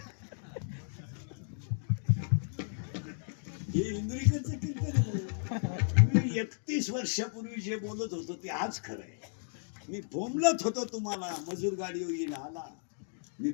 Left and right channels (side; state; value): right; silent; digital silence